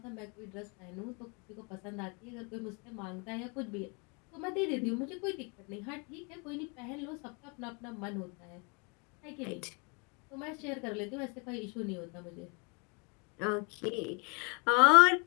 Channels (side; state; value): right; quieter; 32.6 dB